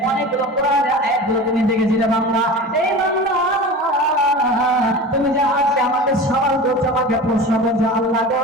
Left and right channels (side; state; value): both; normal; correlation 0.33